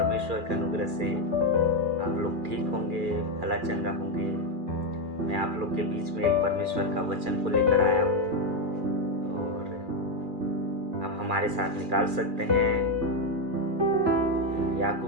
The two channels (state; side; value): late; left; 2.4 ms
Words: के अनुग्रह से आप लोग ठीक होंगे, भला चंगा होंगे। मैं आप लोग के बीच में एक परमेश्वर का वचन को लेकर आया हूँ और आप हमारे साथ निकाल सकते हैं